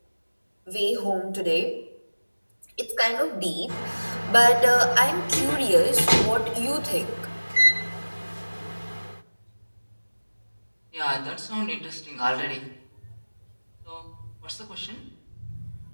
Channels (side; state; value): both; inverted; correlation -1.00